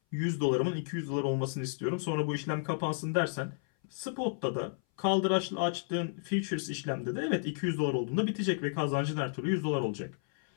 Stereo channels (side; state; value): right; silent; 56 dB below the other